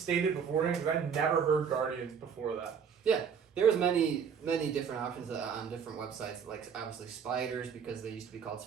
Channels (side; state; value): left; quieter; 7.0 dB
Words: beforehand? Because I never heard Guardians before that. There was many different options on different websites, like obviously spiders because they used to be called